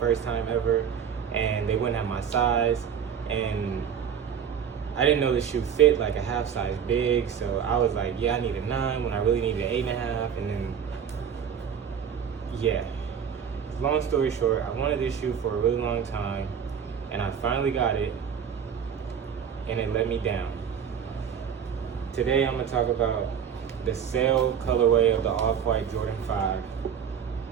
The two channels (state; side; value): quieter; left; 7.7 dB